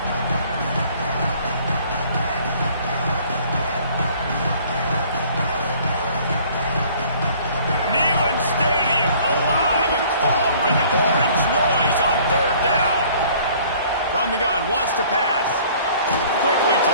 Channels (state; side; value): inverted; both; correlation -0.54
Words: From the gun, wants to pass. Quickly to